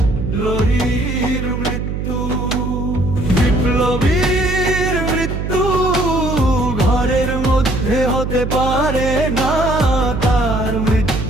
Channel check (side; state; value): right; noise; hum, 3 dB below the sound